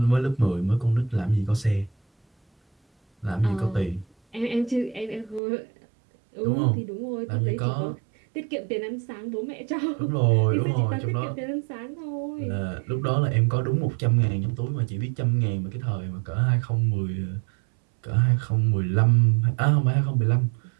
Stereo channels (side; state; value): left; drops out; at 5.4 s